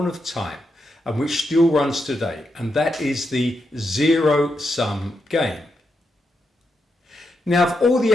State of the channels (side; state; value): both; normal; correlation 0.84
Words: of time and which still runs today, and that is the zero-sum game. Now, of all the